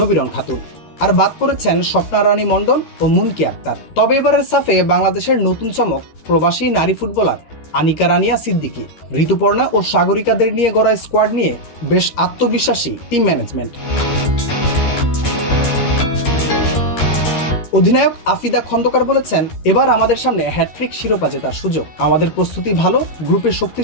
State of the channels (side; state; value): right; late; 13 ms